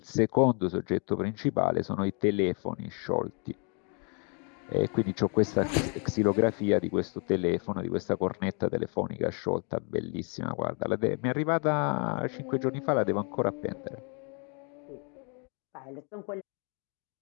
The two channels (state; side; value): quieter; right; 37.1 dB